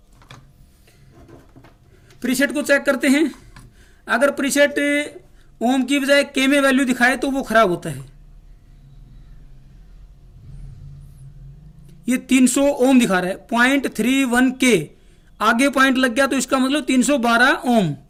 प्रीसेट को चेक करते हैं। अगर प्रीसेट ओम की बजाय के में वैल्यू दिखाए तो वो खराब होता है। ये 300 ओम दिखा रहा है, 0.31 के आगे पॉइंट लग गया तो इसका मतलब 312 ओम।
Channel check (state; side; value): identical; both; correlation 1.00